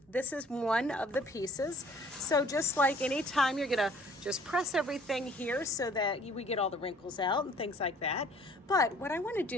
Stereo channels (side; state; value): both; normal; correlation 0.55